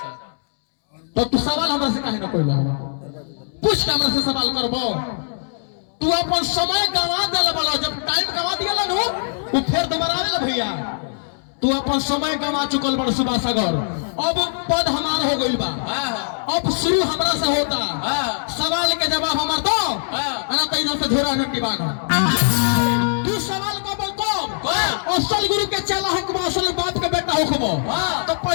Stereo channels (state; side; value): silent; right; 65 dB below the other